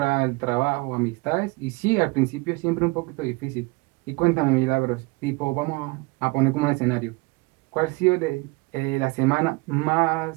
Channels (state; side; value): quieter; left; 25.5 dB